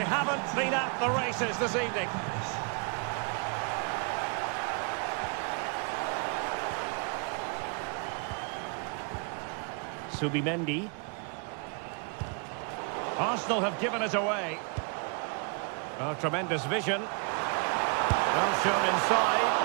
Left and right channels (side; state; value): left; quieter; 36.2 dB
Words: haven't been at the races this evening. Subimendi. Arsenal have given it away. Oh, tremendous vision. Well shown